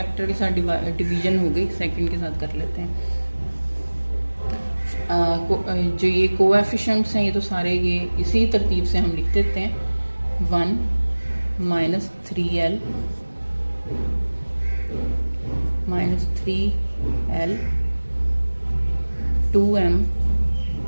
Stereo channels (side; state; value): both; inverted; correlation -1.00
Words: के साथ डिवीजन हो गई, सेकंड के साथ कर लेते हैं। जो ये कोएफिशिएंट्स हैं, ये तो सारे ये इसी तरतीब से हम लिख देते हैं। 1 minus 3l minus 3l 2m